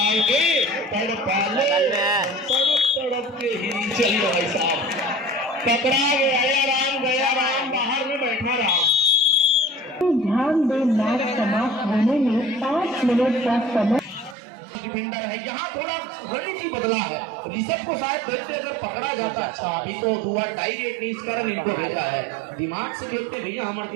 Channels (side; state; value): left; drops out; at 14.4 s